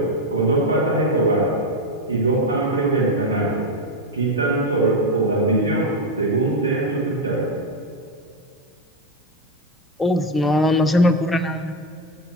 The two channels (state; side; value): normal; both; correlation 0.08